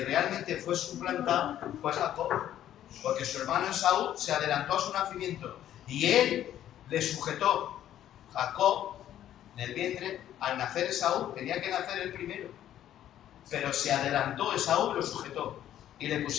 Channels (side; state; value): right; quieter; 11.6 dB